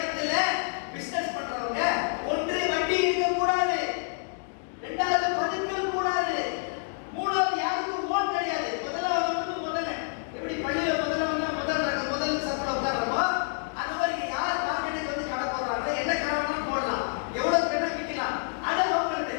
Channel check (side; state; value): right; silent; 58 dB below the other